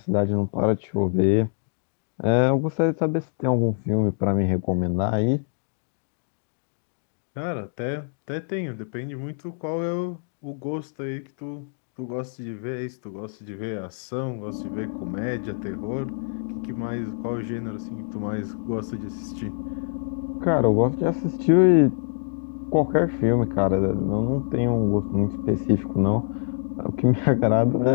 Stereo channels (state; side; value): silent; right; 58 dB below the other